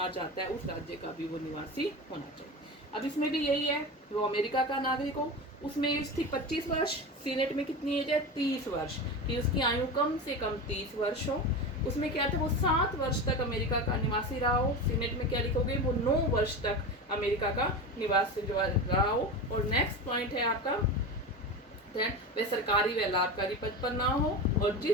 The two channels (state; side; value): normal; both; correlation 0.25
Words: चाहता है उस राज्य का भी वो निवासी होना चाहिए। अब इसमें भी यही है, वो अमेरिका का नागरिक हो, उसमें एज थी 25 वर्ष, सीनेट में कितनी एज है? 30 वर्ष, कि उसकी आयु कम से कम 30 वर्ष हो। उसमें क्या था? वो 7 वर्ष तक अमेरिका का निवासी रहा हो। सीनेट में क्या लिखोगे? वो 9 वर्ष तक अमेरिका का निवासी जो रहा हो। और नेक्स्ट पॉइंट है आपका, वह सरकारी व लाभकारी पद पर ना हो और